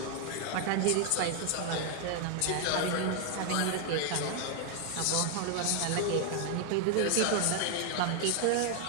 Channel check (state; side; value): different; both; correlation 0.01